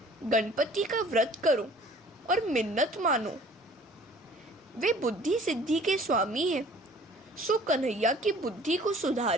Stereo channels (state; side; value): normal; both; correlation 0.51